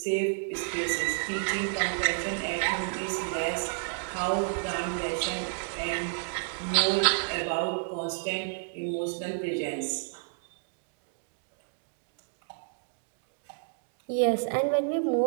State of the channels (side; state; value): left; silent; digital silence